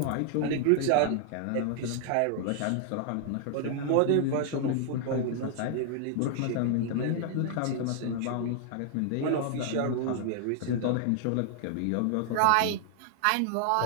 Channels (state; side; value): different; both; correlation 0.00